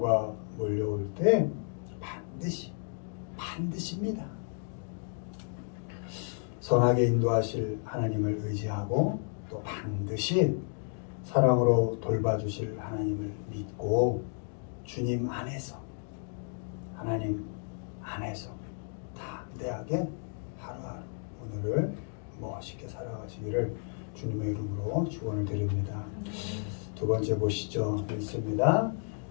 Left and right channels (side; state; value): right; silent; 56 dB below the other